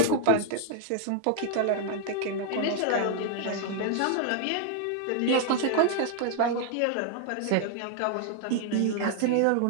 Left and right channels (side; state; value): both; different; correlation 0.00